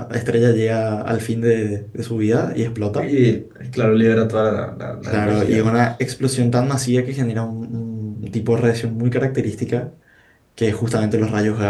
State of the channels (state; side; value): identical; both; correlation 1.00